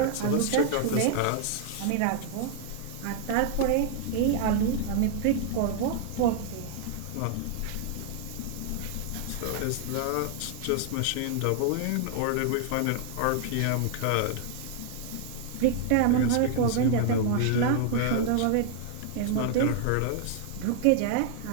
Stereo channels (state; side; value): different; both; correlation 0.00